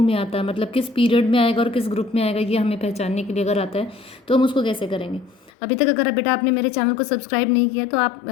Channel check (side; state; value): right; drops out; at 5.5 s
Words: में आता है, मतलब किस पीरियड में आएगा और किस ग्रुप में आएगा, ये हमें पहचानने के लिए अगर आता है तो हम उसको कैसे करेंगे। अभी तक अगर बेटा आपने मेरे चैनल को सब्सक्राइब नहीं किया तो आप